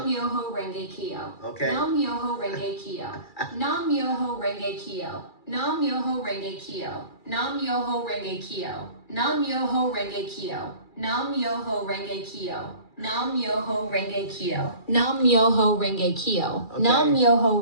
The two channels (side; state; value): right; late; 2.3 ms